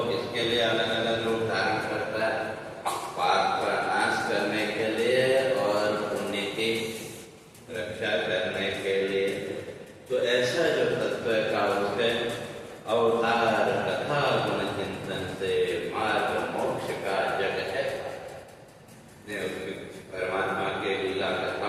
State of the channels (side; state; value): both; identical; correlation 1.00